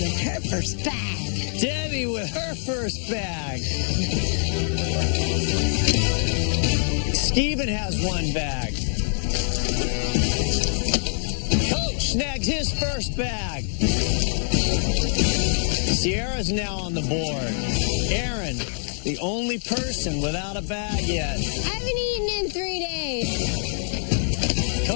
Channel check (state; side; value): silent; right; 60 dB below the other